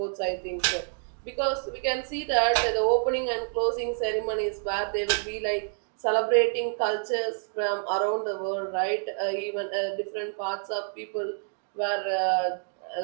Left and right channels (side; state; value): left; silent; 59 dB below the other